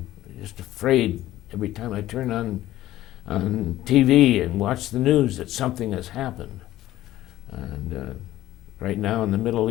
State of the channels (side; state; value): right; quieter; 14.7 dB